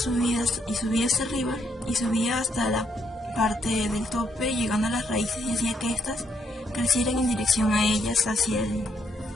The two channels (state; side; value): normal; both; correlation 0.74